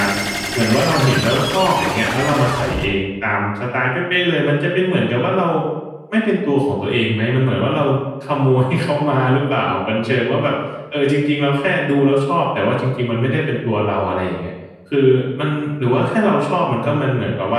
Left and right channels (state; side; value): identical; both; correlation 1.00